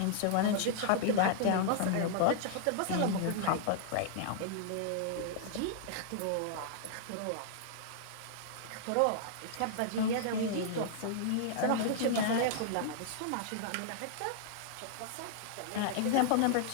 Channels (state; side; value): different; both; correlation -0.01